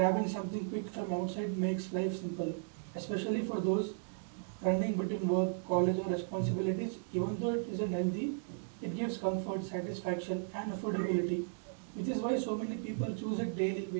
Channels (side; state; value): left; silent; digital silence